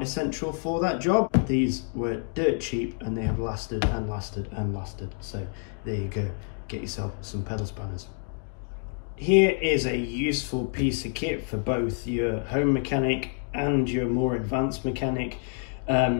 for that job. These were dirt cheap and they have lasted and lasted and lasted. So there you go. Get yourself some pedal spanners. Here is a useful piece of kit for both your home mechanic and your more advanced mechanic.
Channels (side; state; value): right; silent; 56 dB below the other